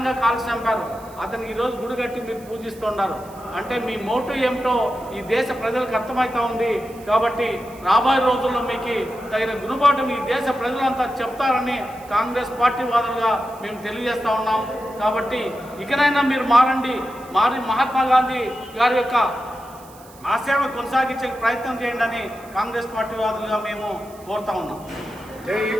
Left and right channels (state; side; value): noise; right; hiss, 23 dB below the sound